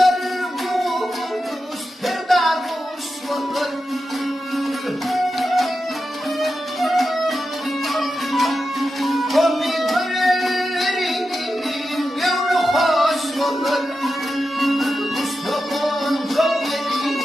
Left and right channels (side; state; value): both; normal; correlation 0.90